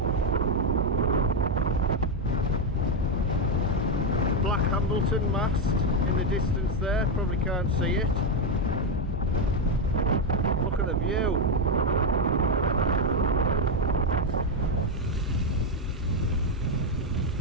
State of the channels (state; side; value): normal; both; correlation 0.05